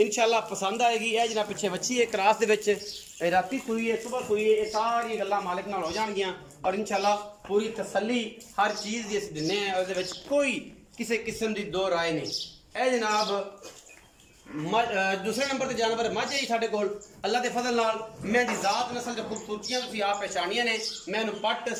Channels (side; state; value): both; identical; correlation 1.00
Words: पसंद आएगी। यह जनाब पिछे बच्ची है क्रॉस दे विच, राती सुई है, सुबह सुई है, ये सारी गल्लां मालिक नाल हो जाणगियां और इंशाल्लाह पूरी तसल्ली हर चीज़ दी असीं दिन्ने आं। उहदे विच कोई किसी किस्म की 2 राय नहीं। यह जनाब दूसरे नंबर पर जानवर मझ है साढ़े कोल अल्लाह के फजल नाल। मैं दी जात नस्ल की खूबसूरतियां तुसीं आप पहचानियां ने। मैनू पट